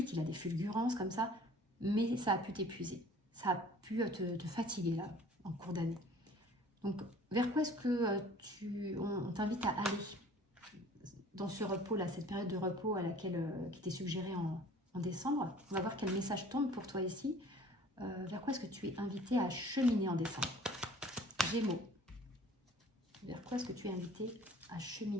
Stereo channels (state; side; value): normal; both; correlation 0.49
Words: il a des fulgurances comme ça. Mais ça a pu t'épuiser. Ça a pu te fatiguer là, en cours d'année. Donc, vers quoi est-ce que on t'invite à aller dans ce repos-là, cette période de repos à laquelle qui t'est suggérée en décembre? On va voir quel message tombe pour toi ici. Vers quoi est-ce que tu es invité à cheminer en décembre? Gémeaux. Vers quoi est-ce que tu es invité à